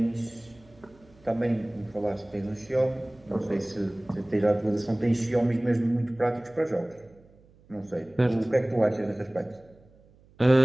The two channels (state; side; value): noise; right; hum, 28 dB below the sound